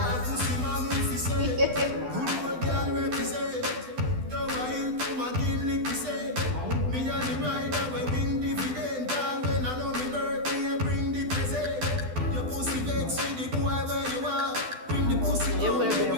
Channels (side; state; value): left; late; 12 ms